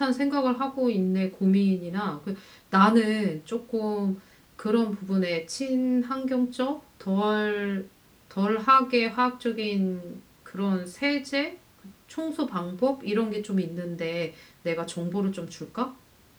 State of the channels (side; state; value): both; identical; correlation 1.00